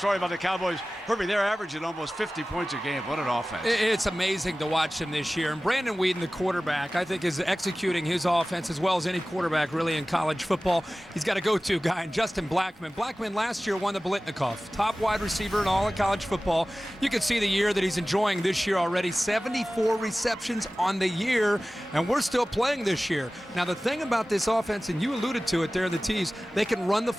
about the Cowboys. Herbie, they're averaging almost 50 points a game. What an offense. It's amazing to watch him this year. And Brandon Wheaton, the quarterback, I think is executing his offense as well as any quarterback really in college football. He's got a go-to guy, and Justin Blackman. Blackman last year won the Biletnikoff, top wide receiver in all of college football. You can see the year that he's enjoying this year already. 74 receptions on the year, and we're still playing this year. Now, the thing about this offense, and you alluded to it there in the tease, they can run the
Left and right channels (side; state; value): both; normal; correlation 0.97